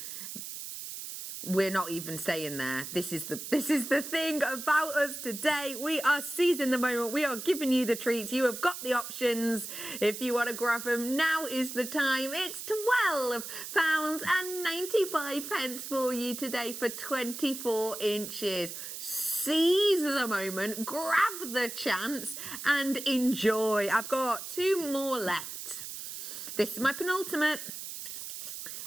We're not even saying there. This is the thing about us today. We are seizing the moment. We are giving you the treats. You have got the options. If you want to grab them, now is the time. It's £12.95 for you today for 24 inches. Seize the moment, grab the chance and enjoy. I've got 2 more left. This is my penultimate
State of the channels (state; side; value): noise; right; hiss, 8 dB below the sound